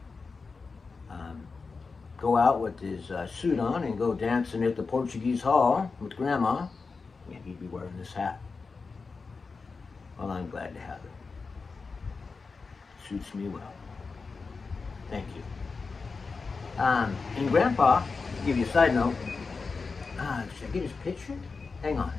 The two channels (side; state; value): right; quieter; 4.5 dB